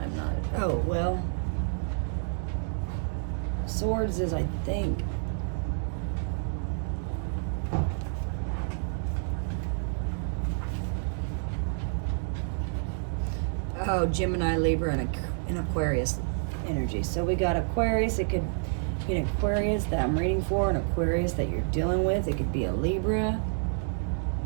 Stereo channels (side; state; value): left; silent; digital silence